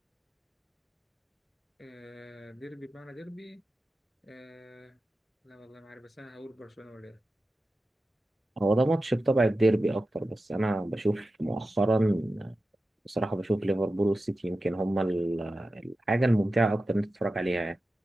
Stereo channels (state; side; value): normal; both; correlation 0.93